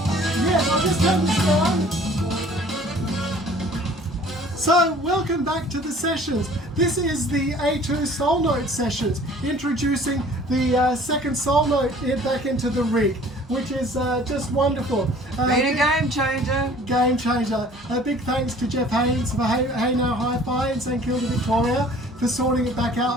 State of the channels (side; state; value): both; normal; correlation 0.51